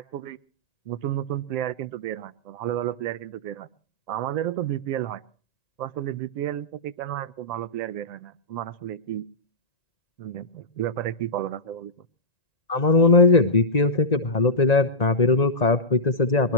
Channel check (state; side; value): late; right; 1.9 ms